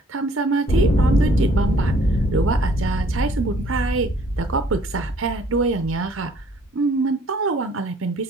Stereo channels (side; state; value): both; normal; correlation 0.59